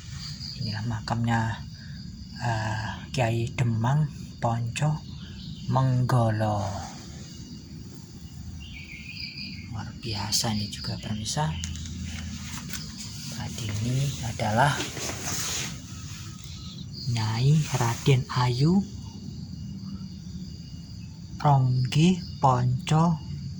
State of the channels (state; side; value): identical; both; correlation 1.00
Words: Inilah makamnya Kiai Demang Ponco Manggolo, luar biasa ini juga permisa. Tadi ini adalah Nyai Raden Ayu Ronggi Ponco